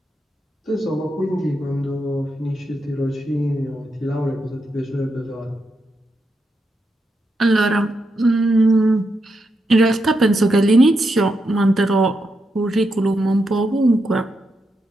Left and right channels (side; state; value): both; normal; correlation 0.84